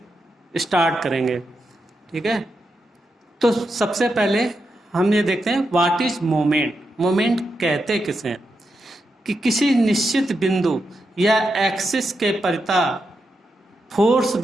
स्टार्ट करेंगे। ठीक है, तो सबसे पहले हम ये देखते हैं व्हाट इज मोमेंट। मोमेंट कहते किसे हैं कि किसी निश्चित बिंदु या एक्सिस के परिता फोर्स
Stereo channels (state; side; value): normal; both; correlation 0.86